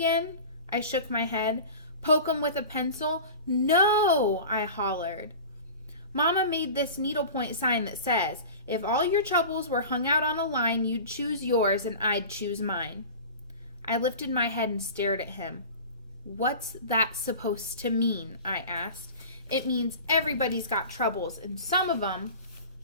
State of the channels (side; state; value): both; inverted; correlation -0.36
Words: I shook my head. "Poke 'em with a pencil?" "No," I hollered. "Mama made this needlepoint sign that says, if all your troubles were hung out on a line, you'd choose yours and I'd choose mine." I lifted my head and stared at him. "What's that supposed to mean?" I asked. "It means everybody's got troubles, and some of them